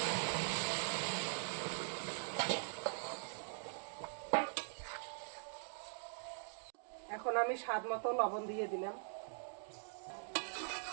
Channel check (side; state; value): left; silent; digital silence